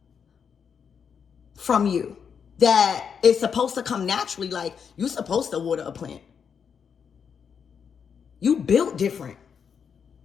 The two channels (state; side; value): quieter; right; 6.9 dB